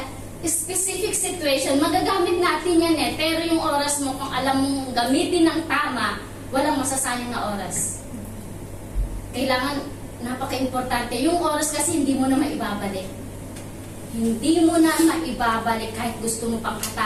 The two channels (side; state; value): both; identical; correlation 1.00